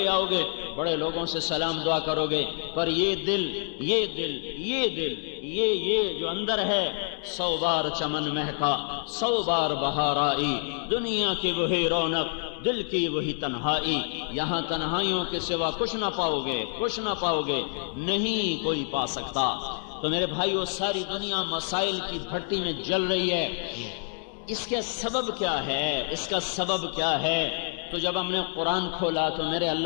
آؤ گے، بڑے لوگوں سے سلام دعا کرو گے، پر یہ دل یہ جو اندر ہے، 100 بار چمن مہکا 100 بار بہار آئی، دنیا کی وہی رونق دل کی وہی تنہائی، یہاں تنہائیوں کے سوا کچھ نہ پاؤ گے، نہیں کوئی پا سکتا۔ تو میرے بھائیو، ساری دنیا مسائل کی بھٹی میں جل رہی ہے، اس کا سبب کیا ہے؟ تو جب ہم نے قرآن کھولا تو میرے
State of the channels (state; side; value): silent; right; 60 dB below the other